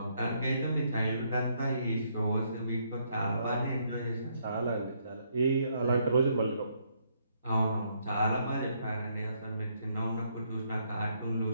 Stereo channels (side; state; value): both; inverted; correlation -0.72